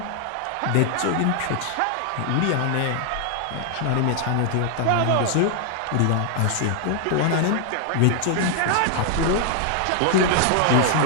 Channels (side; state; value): both; different; correlation 0.00